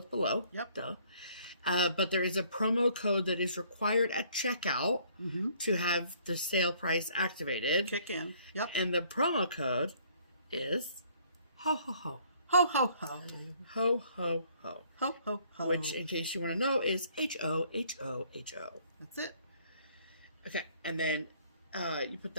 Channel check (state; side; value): inverted; both; correlation -0.61